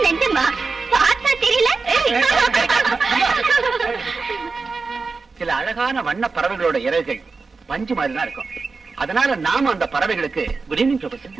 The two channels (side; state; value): left; quieter; 4.3 dB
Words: நெஞ்சுமா பார்த்தா தெரியல. சில அழகான வண்ண பறவைகளோட இறகுகள் பஞ்சு மாதிரி தான் இருக்கும். அதனால நாம அந்த பறவைகளுக்கு good evening professor.